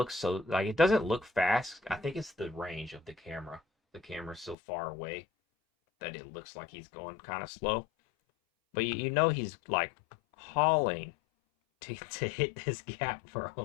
so, like, it doesn't look fast. I think it's the range of the camera. The camera's so far away that it looks like he's going kind of slow. But you know he's like hauling to hit this gap,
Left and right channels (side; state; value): right; drops out; at 4.5 s